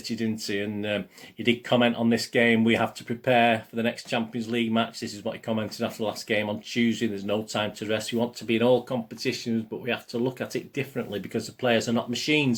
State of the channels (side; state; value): both; identical; correlation 1.00